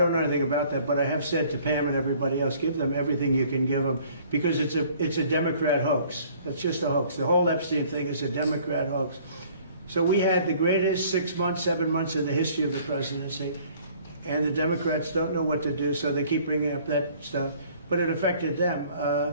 know anything about that, but I have said to Pam and everybody else, give them everything you can give them, because it's a Democrat hoax. It's just a hoax. The whole Epstein thing is a Democrat hoax. So we had the greatest 6 months, 7 months in the history of the presidency, and the Democrats don't know what to do, so they keep bringing up that stuff. But it affected them.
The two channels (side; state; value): both; inverted; correlation -0.55